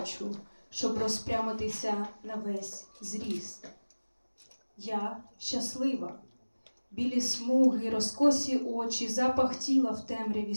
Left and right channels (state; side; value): inverted; both; correlation -1.00